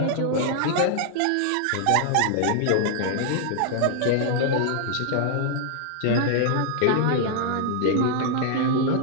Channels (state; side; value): different; both; correlation 0.00